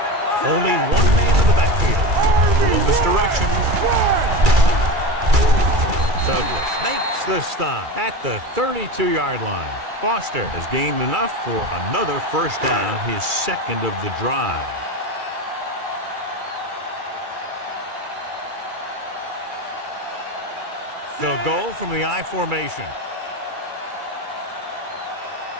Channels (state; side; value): late; left; 2.3 ms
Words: Only one man in the backfield. A little misdirection. Douglas makes the stop at the 32-yard line. Foster has gained enough for another 1st down, his 2nd of the drive. They'll go from the I formation.